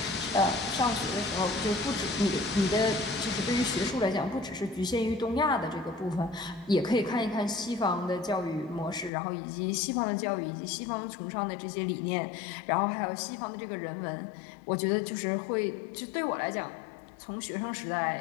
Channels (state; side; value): drops out; right; at 9.1 s